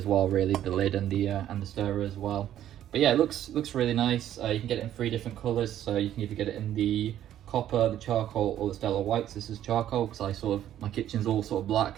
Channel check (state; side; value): quieter; left; 11.6 dB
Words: well, really, the lid and the stirrer as well. But yeah, it looks really nice. You can get it in 3 different colors, so you can either get it in the copper, the charcoal, or the stellar whites. This is charcoal because my kitchen's all sort of black,